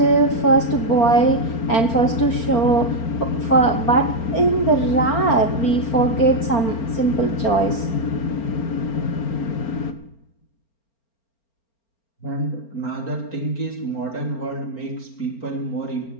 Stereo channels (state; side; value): late; right; 4.4 ms